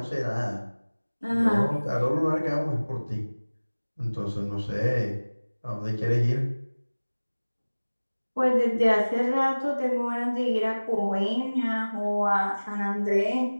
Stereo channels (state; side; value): inverted; both; correlation -1.00